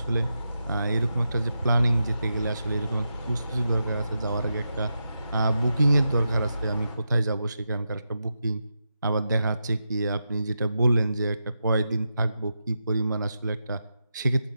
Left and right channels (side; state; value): both; inverted; correlation -0.87